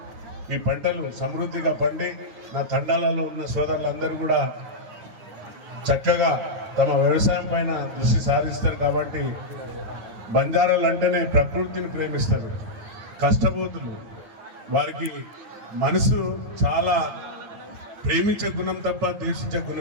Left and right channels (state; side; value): late; left; 9.4 ms